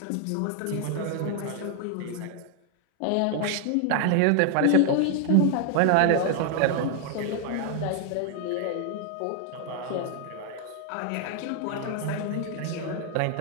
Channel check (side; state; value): both; different; correlation 0.00